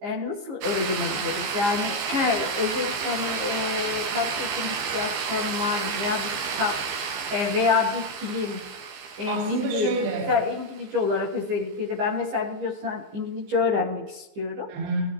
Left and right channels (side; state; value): left; late; 15 ms